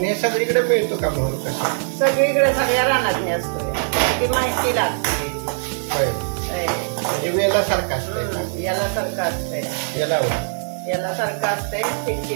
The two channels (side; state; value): left; silent; digital silence